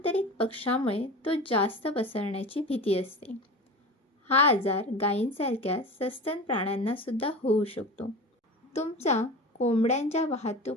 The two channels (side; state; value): both; normal; correlation 0.32